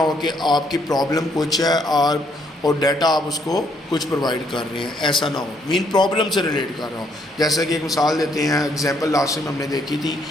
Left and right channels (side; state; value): both; normal; correlation 0.70